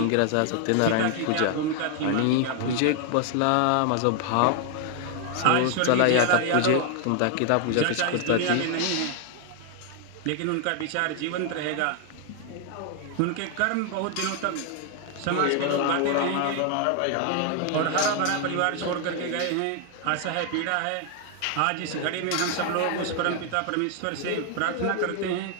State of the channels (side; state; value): both; different; correlation 0.00